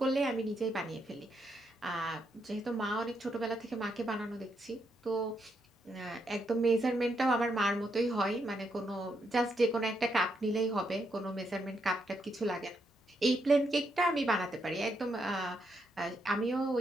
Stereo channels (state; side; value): normal; both; correlation 0.79